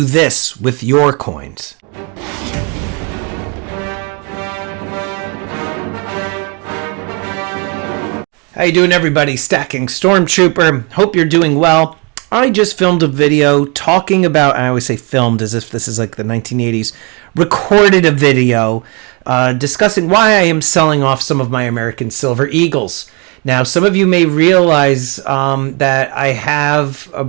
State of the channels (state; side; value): quieter; left; 31.7 dB